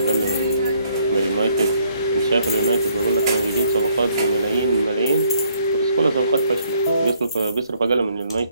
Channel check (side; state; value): both; inverted; correlation -0.67